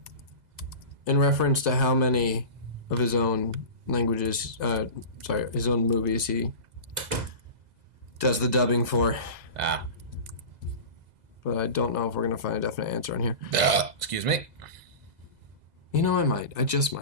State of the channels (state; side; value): late; left; 2.0 ms